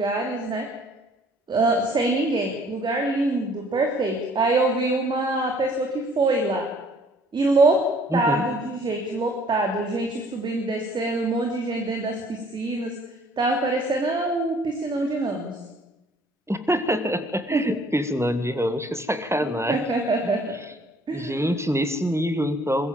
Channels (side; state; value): both; normal; correlation 0.58